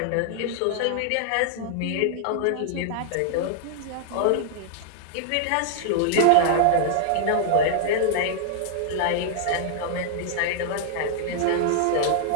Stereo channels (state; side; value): different; both; correlation -0.01